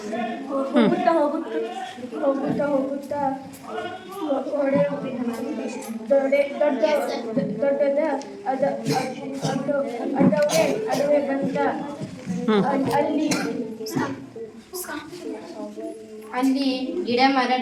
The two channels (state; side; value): identical; both; correlation 1.00